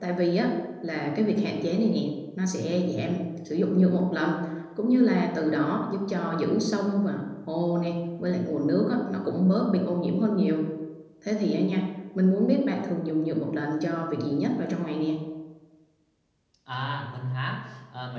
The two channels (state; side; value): identical; both; correlation 1.00